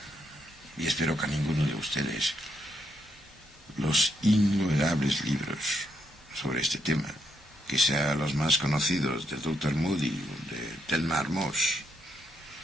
y espero que a ninguno de ustedes, los innumerables libros sobre este tema, que sean los más conocidos del Dr. Moody o de Thelma Moss,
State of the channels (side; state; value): both; normal; correlation 0.77